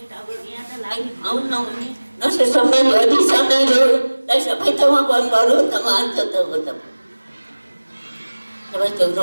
यहाँ त लाग्ने ठाउँ नहुने नसे सबै भरि सबै रोगलाई सबै ठाउँमा बरु त मान्छ त हो त सबै त्यो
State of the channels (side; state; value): both; inverted; correlation -1.00